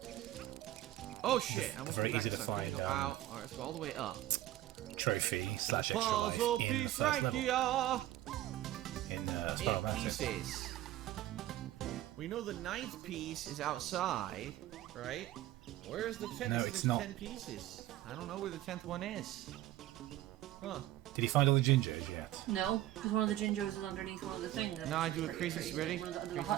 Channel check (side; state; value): left; quieter; 14.5 dB